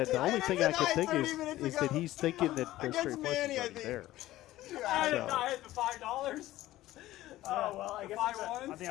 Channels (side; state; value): right; quieter; 15.6 dB